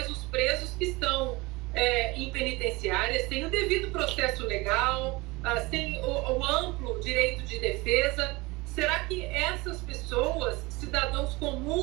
os presos que estão em penitenciárias têm o devido processo legal, têm o amplo direito de defesa. Será que essas pessoas, cidadãos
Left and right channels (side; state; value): left; quieter; 23.2 dB